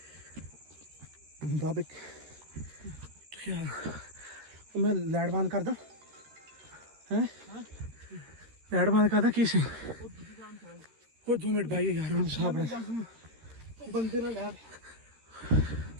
ਬਾਬੇ ਮੈਂ ਲਾਈਟ ਬੰਦ ਕਰਦਾ ਹੈ ਲਾਈਟ ਬੰਦ ਕਰਦਾ ਕੀ ਸੀ ਉਹ 2 ਮਿੰਟ ਬਾਈ ਯਾਰ ਹੁਣ ਸਾਹ ਬਣਾ ਬੰਦੇ ਨਾਲ ਲੈ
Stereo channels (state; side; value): late; left; 13 ms